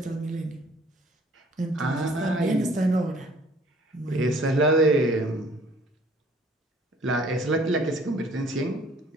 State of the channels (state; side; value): normal; both; correlation 0.56